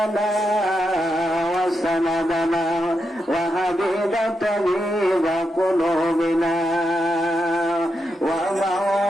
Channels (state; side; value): normal; both; correlation 0.84